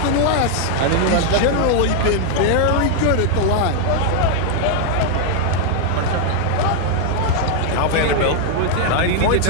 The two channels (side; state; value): both; different; correlation 0.00